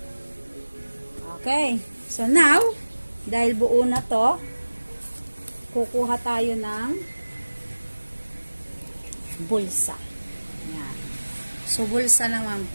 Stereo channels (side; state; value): both; inverted; correlation -1.00